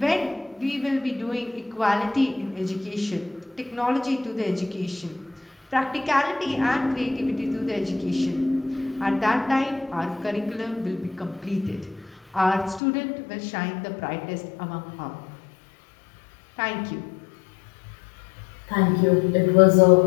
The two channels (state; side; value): drops out; right; at 12.8 s